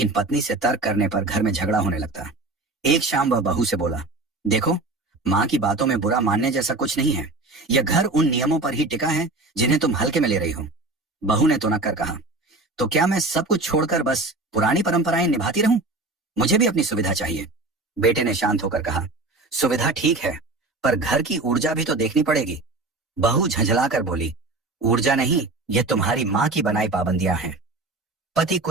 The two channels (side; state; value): left; quieter; 3.1 dB